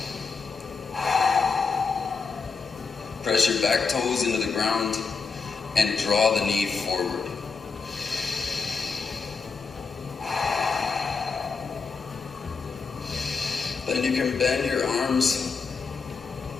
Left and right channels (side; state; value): right; quieter; 5.0 dB